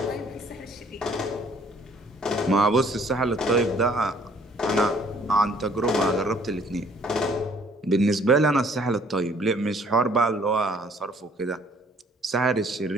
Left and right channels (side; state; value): both; normal; correlation 0.59